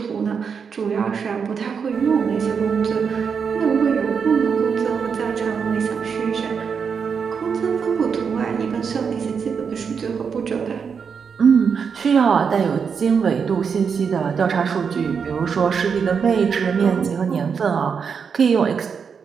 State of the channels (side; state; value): left; quieter; 6.3 dB